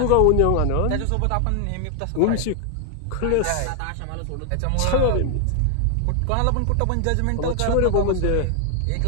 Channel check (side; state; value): both; different; correlation 0.00